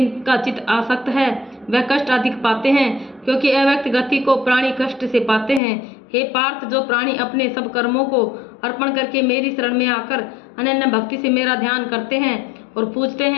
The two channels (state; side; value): drops out; right; at 5.6 s